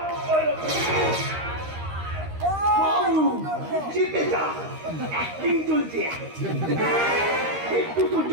জিতে যা, অ্যাক্টিং চলছে। একটু সহ্য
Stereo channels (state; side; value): late; left; 13 ms